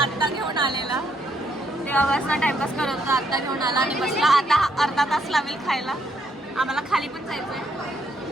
आत्ता घेऊन आलेला, तेव्हापासून टाइमपास करत होता, आत्ता घेऊन आला आणि बसला. आता अर्धा तास लागेल खायला. आम्हाला खाली पण जायचंय.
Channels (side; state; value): both; normal; correlation 0.73